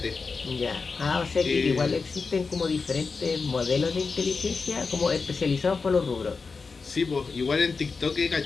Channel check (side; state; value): right; quieter; 4.6 dB